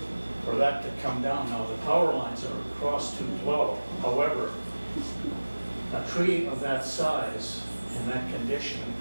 for that to come down. Now, the power lines are across 212. However, a tree of that size in that condition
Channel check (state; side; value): inverted; both; correlation -1.00